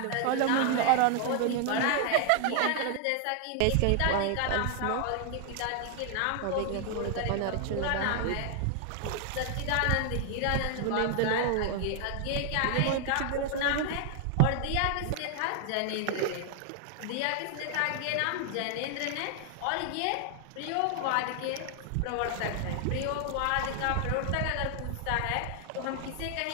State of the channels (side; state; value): both; different; correlation 0.00